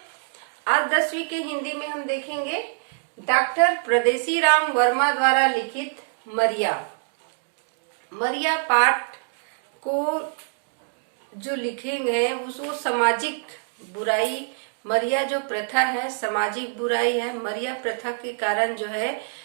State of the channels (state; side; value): silent; left; digital silence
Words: आज 10वीं के हिंदी में हम देखेंगे डॉक्टर परदेसी राम वर्मा द्वारा लिखित मरिया। मरिया पाठ को जो लिखेंगे वो सामाजिक बुराई, मरिया जो प्रथा है सामाजिक बुराई है। मरिया प्रथा के कारण जो है